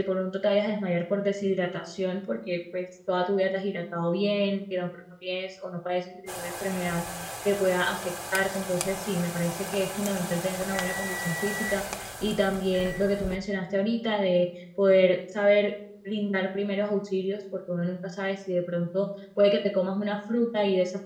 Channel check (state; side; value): identical; both; correlation 1.00